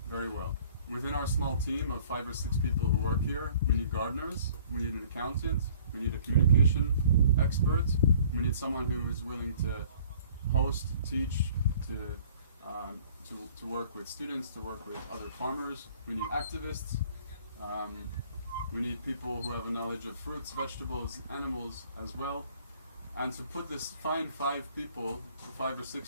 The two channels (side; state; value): both; inverted; correlation -0.53